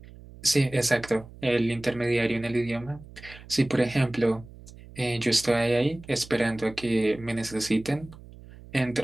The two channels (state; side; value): noise; right; hum, 19 dB below the sound